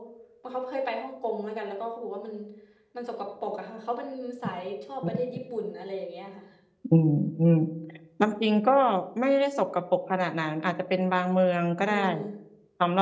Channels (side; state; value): both; identical; correlation 1.00